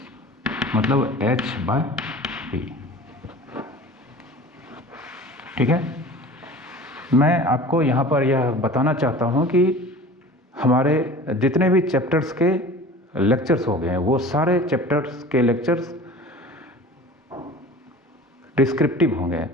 मतलब h/p। ठीक है, मैं आपको यहाँ पर यह बताना चाहता हूँ कि हमारे जितने भी चैप्टर्स के लेक्चर्स हो गए हैं वो सारे चैप्टर्स के लेक्चर्स डिस्क्रिप्टिव होंगे,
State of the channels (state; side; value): normal; both; correlation 0.41